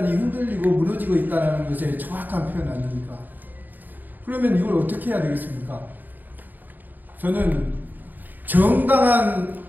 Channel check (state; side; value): late; left; 0.086 ms